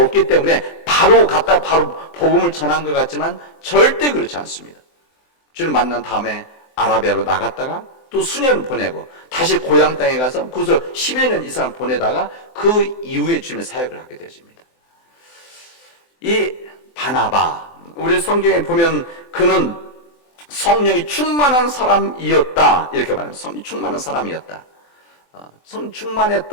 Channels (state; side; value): late; right; 23 ms